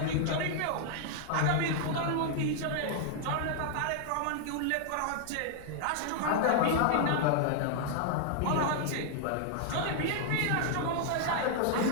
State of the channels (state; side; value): different; both; correlation -0.01